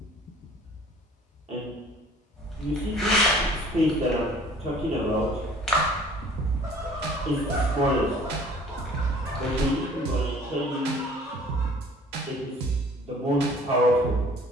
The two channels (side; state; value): both; normal; correlation 0.52